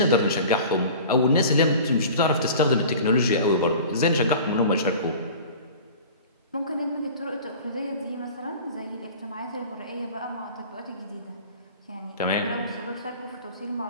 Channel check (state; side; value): inverted; both; correlation -0.41